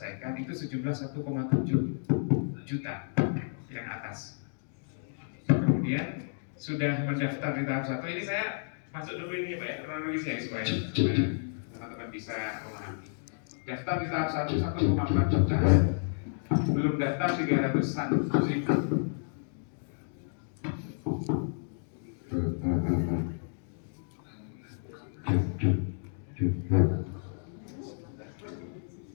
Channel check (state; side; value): silent; right; digital silence